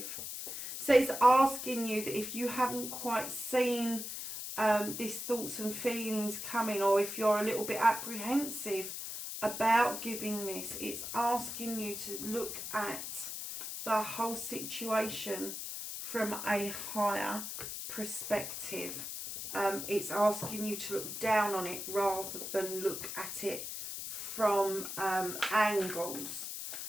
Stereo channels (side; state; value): left; noise; hiss, 6 dB below the sound